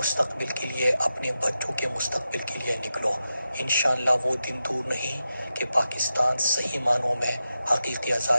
کے لیے، اپنے بچوں کے مستقبل کے لیے نکلو۔ انشاءاللہ وہ دن دور نہیں کہ پاکستان صحیح معنوں میں حقیقی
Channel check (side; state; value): both; inverted; correlation -0.90